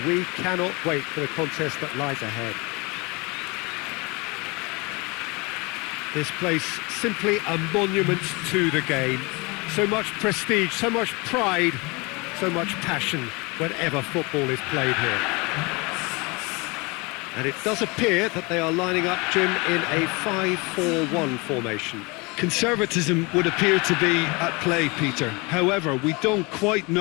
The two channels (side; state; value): right; quieter; 27.0 dB